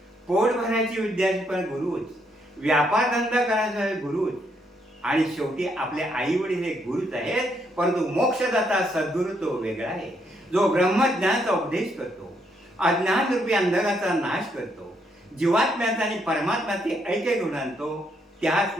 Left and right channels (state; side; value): normal; both; correlation 0.74